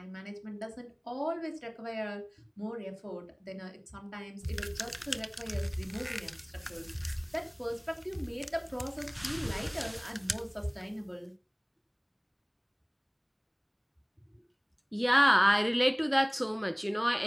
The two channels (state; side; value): identical; both; correlation 1.00